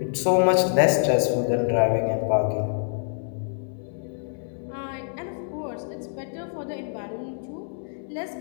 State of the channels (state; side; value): silent; right; 61 dB below the other